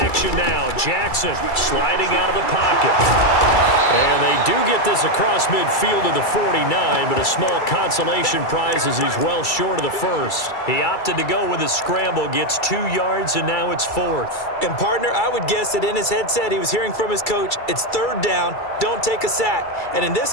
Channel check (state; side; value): late; right; 2.3 ms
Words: action now. Jackson sliding out of the pocket. And they do get this across midfield to the 49, but a small consolation prize as he's well short of the first. He opted to go with a scramble, gets 2 yards, and now it's 4th. And partner, I would guess that in his headset he was hearing from his coach, it's 3rd down, don't take a sack. And in this